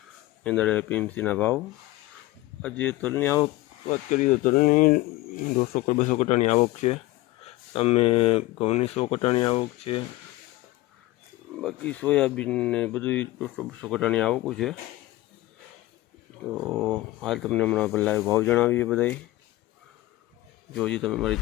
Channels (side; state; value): right; quieter; 17.8 dB